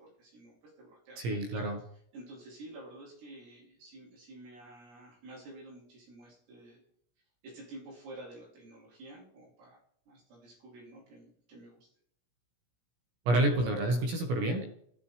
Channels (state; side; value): late; left; 17 ms